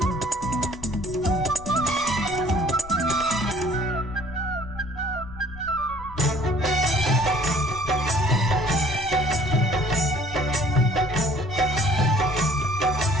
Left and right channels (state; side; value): noise; left; rumble, 15 dB below the sound